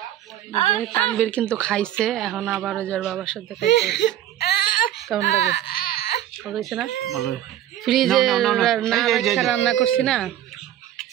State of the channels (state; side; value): quieter; left; 12.0 dB